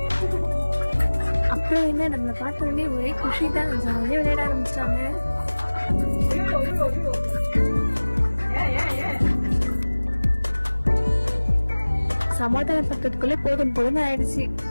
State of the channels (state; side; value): inverted; both; correlation -1.00